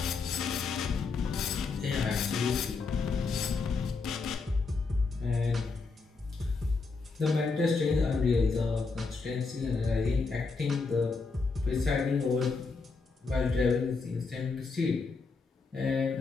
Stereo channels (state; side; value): quieter; right; 4.4 dB